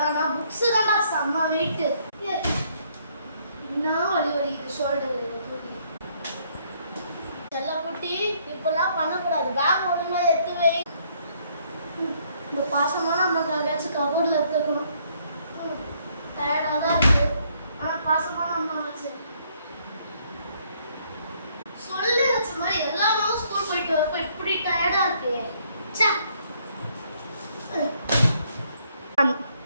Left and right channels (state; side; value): inverted; both; correlation -0.68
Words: ஆனா புக்ஸ் தான்டா செம்ம வெயிட்டு. என்ன வலி வலிக்குது ஷோல்டர். செல்ல குட்டி இப்பெல்லாம் பண்ணக்கூடாது, பேக் ஒழுங்கா எடுத்து வை. இந்த பாசமான அம்மாக்கு அங்கேயாச்சும் கபோர்டில் எடுத்துக்கணும். டயர்டாக தான் இருக்கு, ஆனால் பாசமான அம்மா வச்சு சொல்லி வச்ச மாதிரி எல்லா நாளும் ஸ்கூல் போயிட்டு வரப்ப இப்படி டயர்டா இருக்கு.